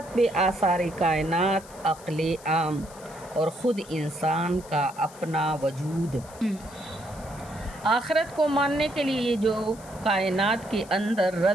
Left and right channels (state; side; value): noise; left; hiss, 20 dB below the sound